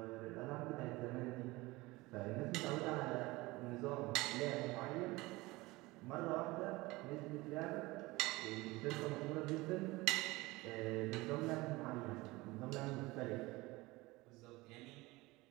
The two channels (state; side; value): quieter; left; 21.3 dB